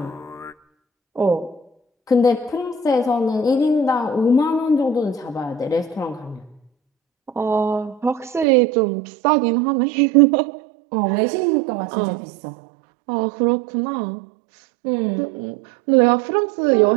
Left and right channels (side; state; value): left; drops out; at 8.5 s